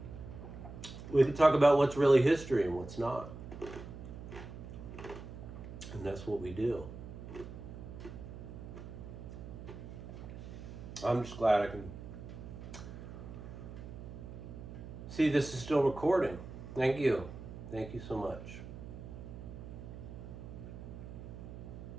what's really history and what's not. And that's what we do. I'm just glad I can see this is still recording. Thank you. Thank you so much.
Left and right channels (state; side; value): noise; right; hum, 11 dB below the sound